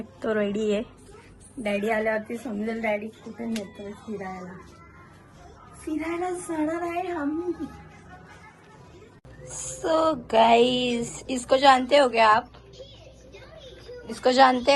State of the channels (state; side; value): identical; both; correlation 1.00